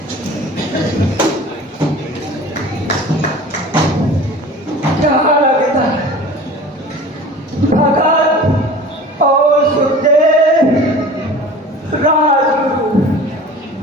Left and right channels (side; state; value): both; normal; correlation 0.41